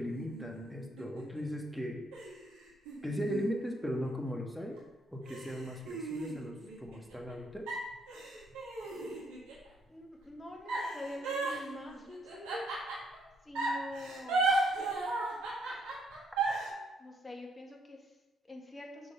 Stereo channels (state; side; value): normal; both; correlation 0.71